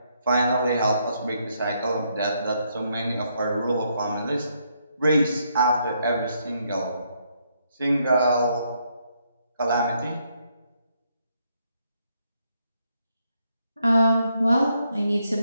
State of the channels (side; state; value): both; inverted; correlation -0.75